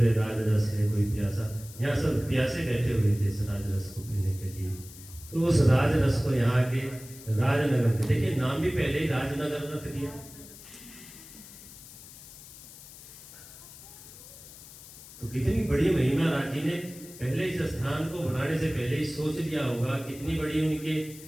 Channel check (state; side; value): noise; left; hiss, 17 dB below the sound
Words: राजरस है कोई प्यासा। यहाँ सब प्यासे बैठे हुए थे इस राजरस को पीने के लिए, तो उस राजरस को यहाँ के राजनगर में, देखिए नाम भी पहले ही राजनगर रख दिया। तो कितनी बड़ी महिमा राज जी ने पहले इस स्थान को बनाने से पहले ही सोच लिया होगा, कितनी बड़ी उनके